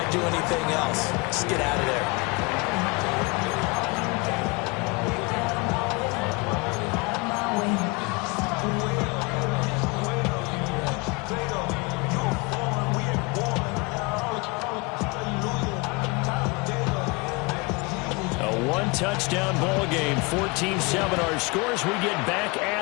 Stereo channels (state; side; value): quieter; right; 27.5 dB